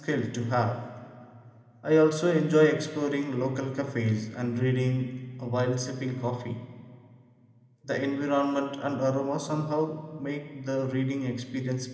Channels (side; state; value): both; identical; correlation 1.00